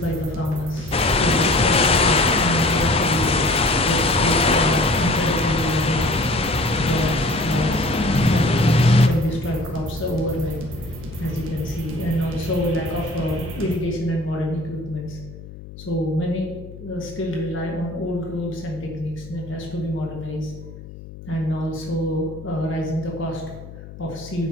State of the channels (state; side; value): noise; left; hum, 15 dB below the sound